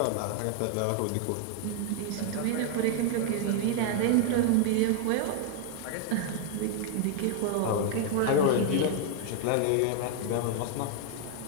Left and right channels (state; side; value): different; both; correlation 0.00